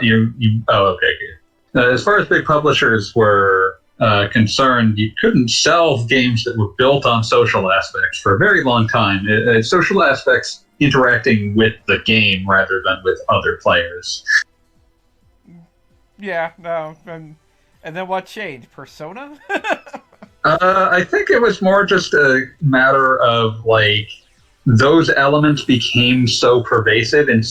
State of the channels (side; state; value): both; identical; correlation 1.00